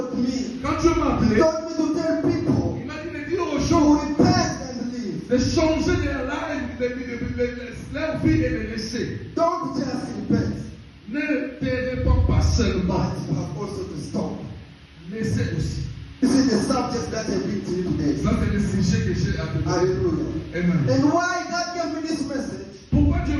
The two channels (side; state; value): both; identical; correlation 1.00